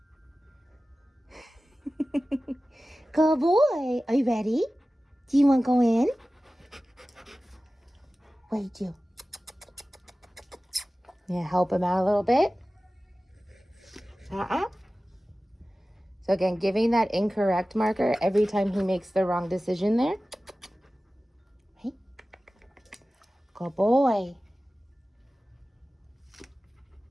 Good boy. Are you ready? Do you want to go in? What do you do? Yeah, help him out a little bit. So again, giving that incorrect marker every time he makes the wrong decision there. Hey. Good boy.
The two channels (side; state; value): both; normal; correlation 0.96